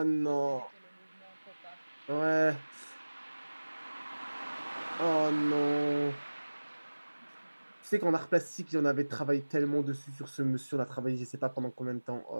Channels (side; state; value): both; inverted; correlation -1.00